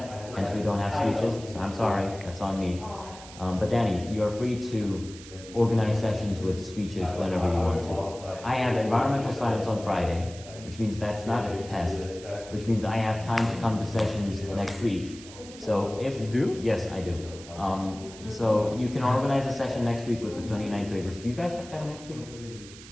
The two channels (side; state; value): right; noise; hiss, 17 dB below the sound